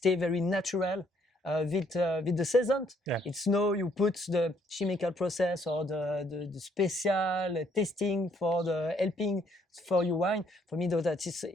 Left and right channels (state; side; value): normal; both; correlation 0.67